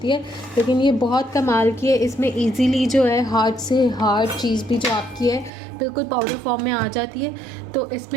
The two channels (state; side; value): drops out; left; at 5.5 s